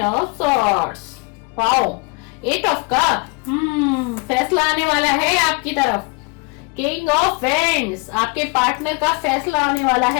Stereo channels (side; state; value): right; quieter; 30.2 dB